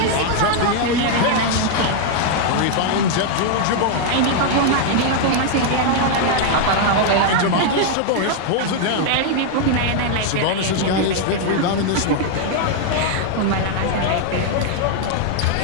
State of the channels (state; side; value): different; both; correlation 0.00